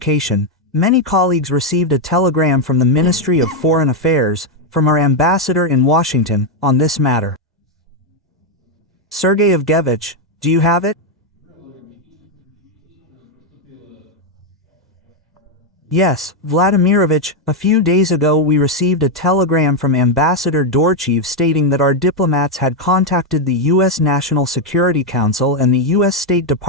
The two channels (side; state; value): both; normal; correlation 0.03